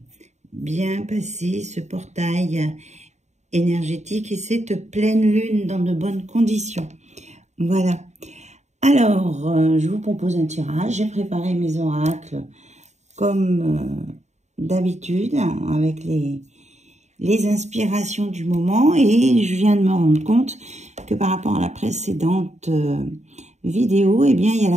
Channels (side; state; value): left; late; 0.33 ms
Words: bien passé ce portail énergétique et cette pleine lune dans de bonnes conditions. Voilà. Alors, je vous propose un tirage. J'ai préparé mes oracles comme d'habitude avec les inspirations du moment et je viens de me rendre compte que par rapport à la précédente vidéo, eh bien, il y a